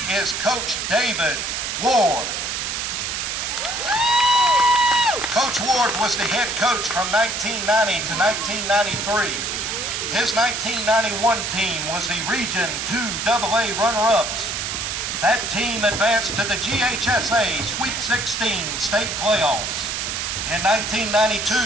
is Coach David Ward. Coach Ward was the head coach from 1990 to 1993. His 1991 team was the Region 2 AA runner-ups. That team advanced to the GHSA Sweet 16 state playoffs. In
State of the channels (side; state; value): right; noise; hiss, 2 dB below the sound